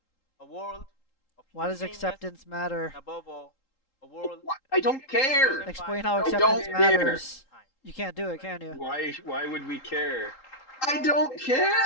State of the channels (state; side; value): late; right; 3.8 ms